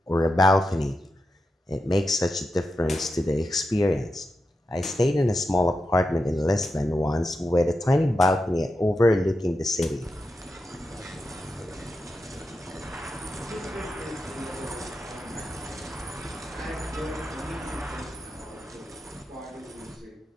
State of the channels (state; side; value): normal; both; correlation 0.88